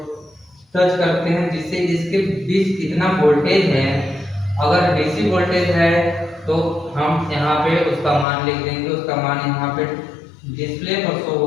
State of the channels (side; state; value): right; drops out; at 8.2 s